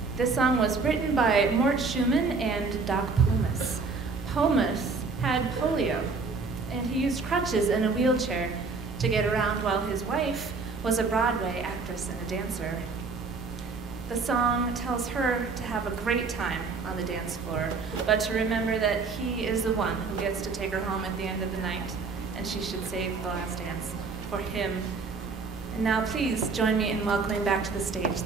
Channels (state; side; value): quieter; left; 4.4 dB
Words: This song was written by Mort Schumann and Doc Pomus. Pomus had polio, and he used crutches and a wheelchair to get around while his wife was a Broadway actress and a dancer. The song tells her to have a great time on the dance floor, but to remember that he is the one who gets to take her home at the end of the night, and she should save the last dance for him. And now please join me in welcoming back to the stage